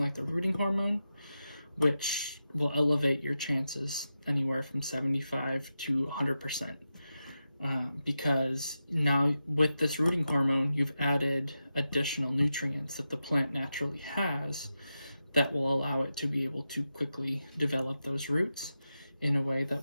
the rooting hormone, which will elevate your chances anywhere from 75 to 100%. Because now with this rooting hormone, you've added additional nutrients that the plant naturally has that will allow it to be able to quickly develop those roots in a way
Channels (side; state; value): both; inverted; correlation -0.90